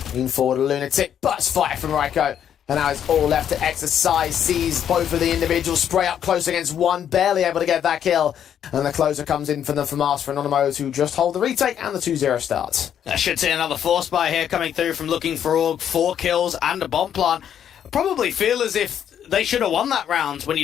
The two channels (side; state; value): right; quieter; 9.3 dB